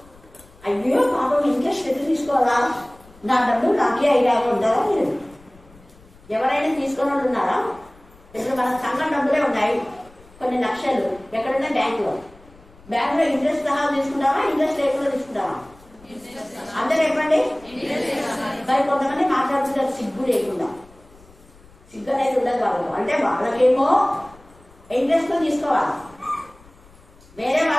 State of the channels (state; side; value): noise; left; rumble, 25 dB below the sound